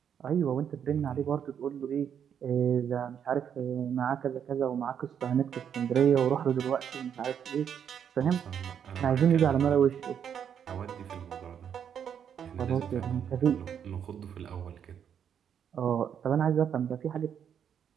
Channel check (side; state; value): left; quieter; 8.4 dB